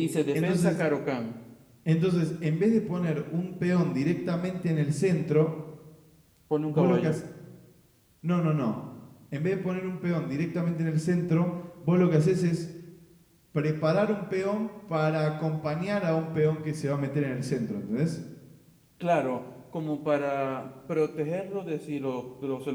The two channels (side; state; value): both; identical; correlation 1.00